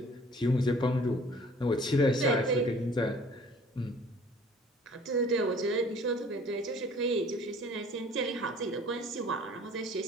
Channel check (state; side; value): normal; both; correlation 0.52